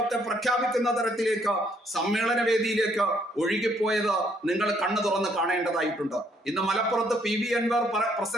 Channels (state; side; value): normal; both; correlation 0.68